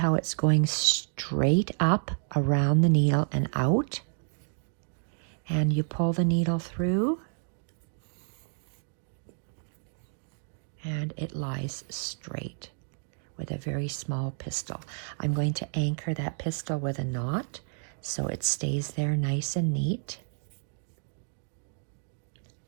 it's going straight up around the needle and out. And you pull the needle through, and it lies straight with a very small pistil. I'm going to anchor that pistil with a knot so it stays there nice and neat.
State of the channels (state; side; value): silent; left; digital silence